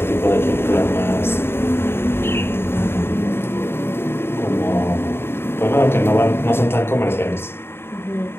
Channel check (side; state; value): right; late; 0.11 ms